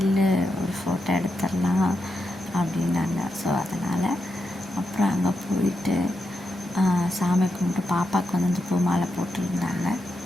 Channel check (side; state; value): both; normal; correlation 0.86